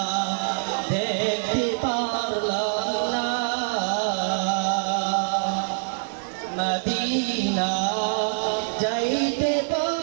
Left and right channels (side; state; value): left; silent; digital silence